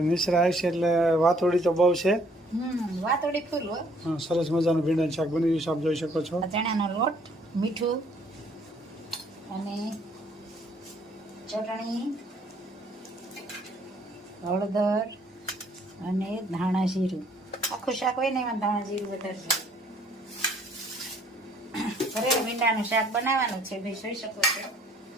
મિશ્રા આવશે એટલે વાતોડી તો બહુ છે. વાતોડી ફૂલ હોય. સરસ મજાનું ભીંડાનું શાક બની ગયું છે, આપ જોઈ શકો છો. ચણાનો લોટ, મીઠું અને ચટણી, હળદર અને ધાણા જીરું. આખું શાક હોય ને એમાં ધાણા જીરું વધારે છે. ભરેલ ભીંડાનું શાક બનાવવાનું છે ભાઈ, જોઈ શકો છો.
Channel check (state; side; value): normal; both; correlation 0.62